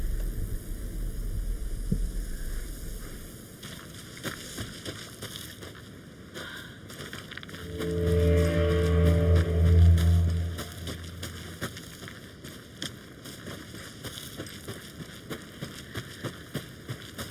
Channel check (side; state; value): both; identical; correlation 1.00